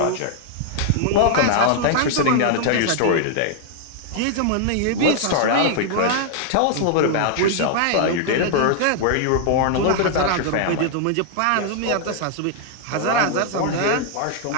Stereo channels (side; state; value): both; different; correlation -0.01